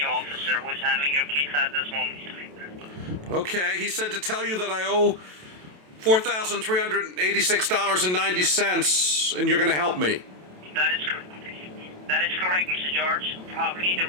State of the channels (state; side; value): late; left; 27 ms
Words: officer who is handling your case at this moment. Okay, he said to tell you that I owe $4,386.90, and you're going to help me. That is correct. That is correct, Mr. George. Probably the